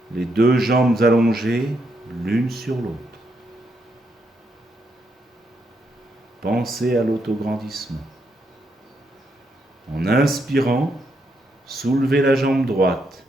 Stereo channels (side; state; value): both; normal; correlation 0.78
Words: Les deux jambes allongées l'une sur l'autre. Pensez à l'autograndissement. En inspirant, soulevez la jambe droite